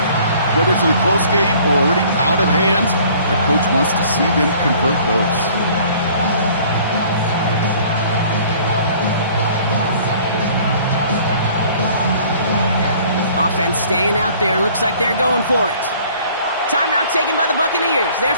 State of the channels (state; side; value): inverted; both; correlation -0.53